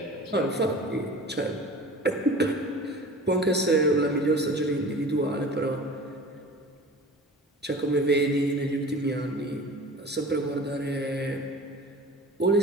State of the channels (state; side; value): normal; both; correlation 0.39